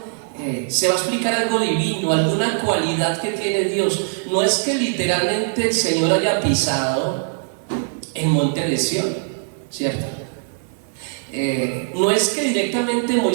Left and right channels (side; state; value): left; silent; 60 dB below the other